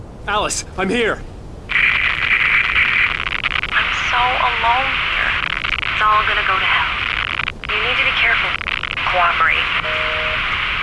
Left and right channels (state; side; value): identical; both; correlation 1.00